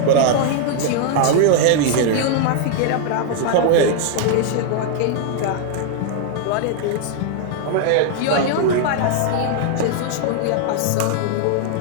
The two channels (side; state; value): both; different; correlation 0.00